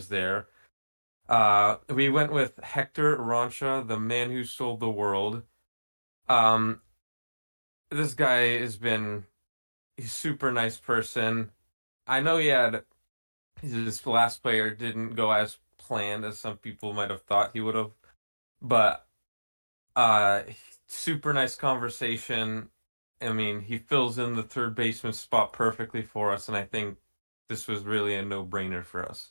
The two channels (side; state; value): both; inverted; correlation -1.00